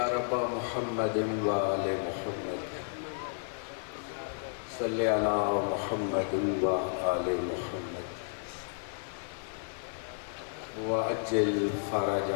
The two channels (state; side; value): silent; right; digital silence